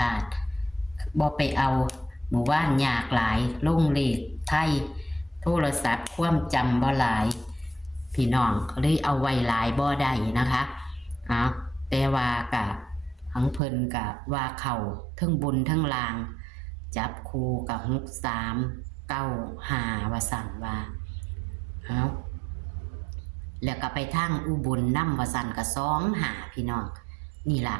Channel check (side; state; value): left; drops out; at 13.6 s